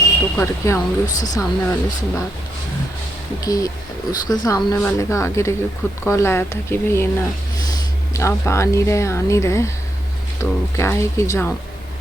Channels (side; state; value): both; normal; correlation 0.81